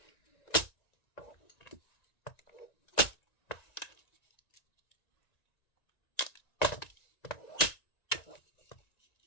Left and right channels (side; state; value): right; late; 1.9 ms